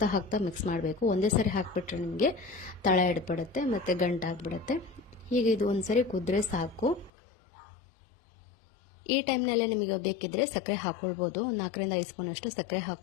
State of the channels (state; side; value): drops out; right; at 7.1 s